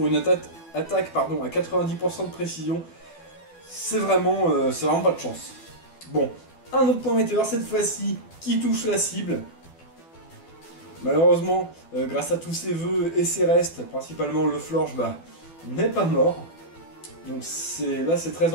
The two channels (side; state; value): right; late; 12 ms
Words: une attaque à 90% de précision. C'est vraiment pas de chance. Bon, un autre point météore cette fois-ci qui touche la cible. Malheureusement, grâce à tous ses vœux et ses restes, principalement le Florge, n'est pas mort. Donc là c'est très